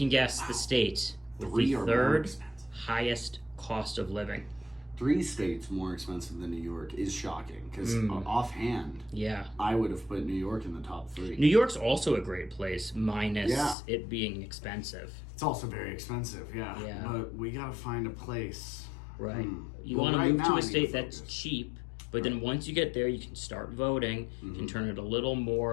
guess the state with 3 the are more 3rd expensive. highest cost of living. 3 states more expensive than New York is shocking because offhand, Yeah. I would have put New York in the top 3. New York's also a great place, minus Yeah. it being expensive. It's also very expensive, yeah. Yeah. But we gotta find a place. Right. You Well, want to right move now to I a need to state that's focus. cheap, but then once you get there, you can start voting. You can turn it a little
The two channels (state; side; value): drops out; right; at 13.8 s